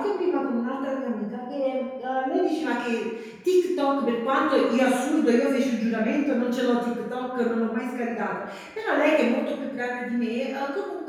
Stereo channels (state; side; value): identical; both; correlation 1.00